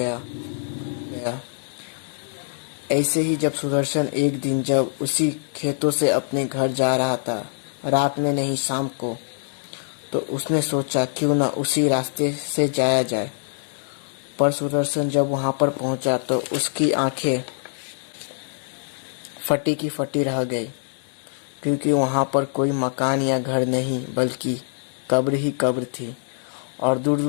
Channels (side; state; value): right; silent; 61 dB below the other